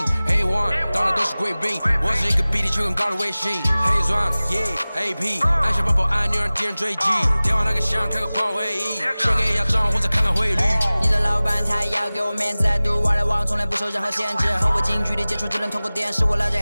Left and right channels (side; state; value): both; inverted; correlation -0.99